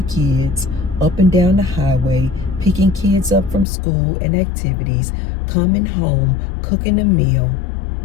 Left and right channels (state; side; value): drops out; right; at 3.7 s